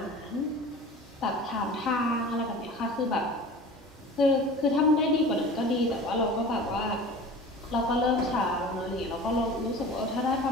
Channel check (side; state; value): both; normal; correlation 0.39